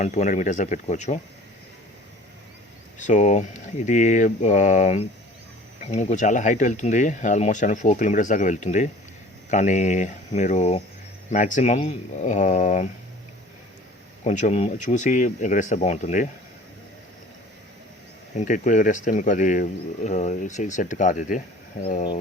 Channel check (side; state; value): both; normal; correlation 0.47